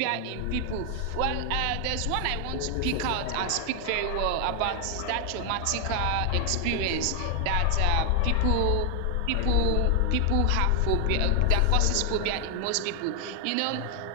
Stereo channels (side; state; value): both; different; correlation 0.00